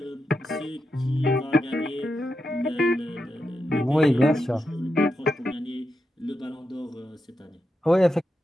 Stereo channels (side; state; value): both; normal; correlation 0.87